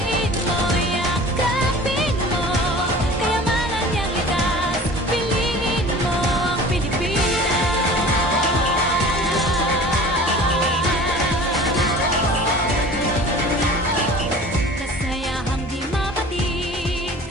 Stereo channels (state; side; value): normal; both; correlation 0.42